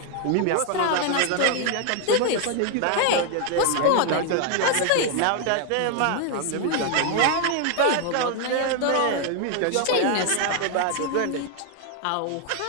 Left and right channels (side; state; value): both; different; correlation 0.00